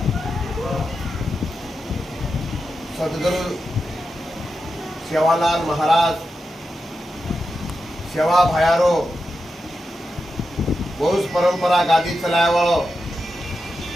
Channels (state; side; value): normal; both; correlation 0.89